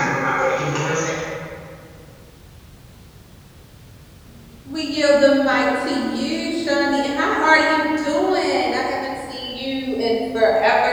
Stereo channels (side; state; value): both; identical; correlation 1.00